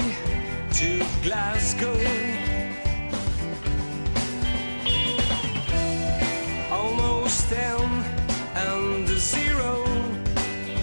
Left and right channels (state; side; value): inverted; both; correlation -1.00